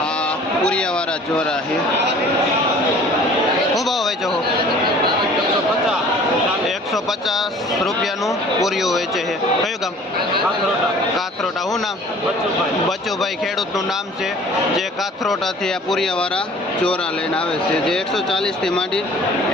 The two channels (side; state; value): both; normal; correlation 0.49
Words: આ પુરિયાવાળા ચોરા છે, શું ભાવ વેચો? 150 રૂપિયાનું પૂરિયું વેચે છે। કયું ગામ? કાથરોટા। શું નામ? બચુભાઈ ખેડૂતનું નામ છે જે કાથરોટાથી આ પુરિયાવાળા ચોરા લઈને આવે છે, જે 140 થી માંડી